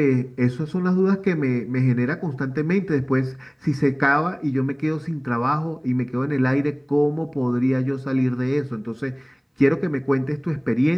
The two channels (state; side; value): identical; both; correlation 1.00